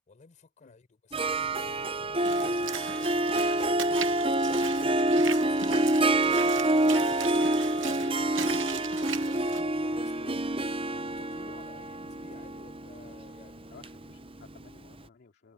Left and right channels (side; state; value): both; normal; correlation 0.44